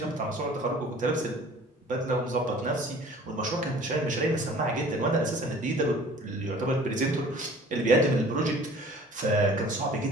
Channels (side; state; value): both; normal; correlation 0.48